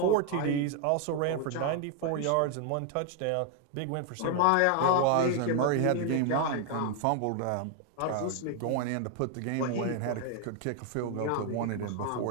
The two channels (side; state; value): both; different; correlation 0.01